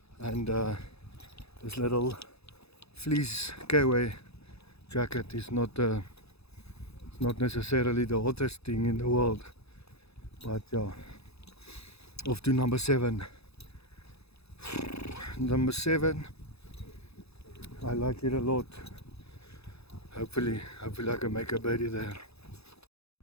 and this little fleece Kiwi jacket is not necessarily the hottest thing in the world, but yeah. Off to number 7. Number 7, I like it a lot. Hopefully I can make a birdie there.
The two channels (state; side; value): late; right; 0.79 ms